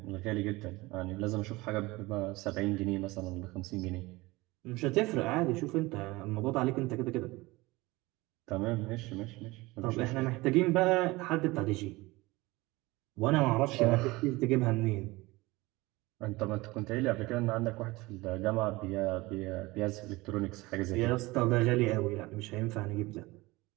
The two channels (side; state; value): left; quieter; 21.4 dB